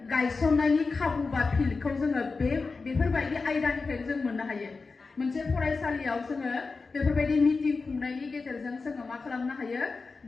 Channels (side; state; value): right; quieter; 4.2 dB